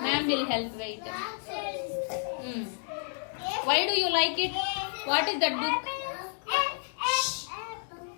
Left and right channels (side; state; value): right; silent; 58 dB below the other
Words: Ma'am will help. Wait. Why do you like it? What is that book?